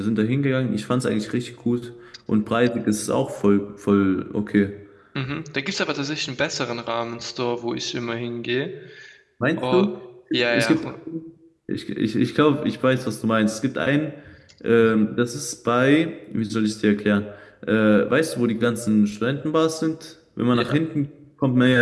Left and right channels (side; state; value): both; identical; correlation 1.00